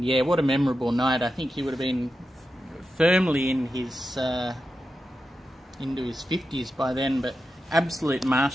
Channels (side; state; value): both; normal; correlation 0.90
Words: yeah, what a memorable night. I think he would have been firmly in his into his 50s by then, but absolute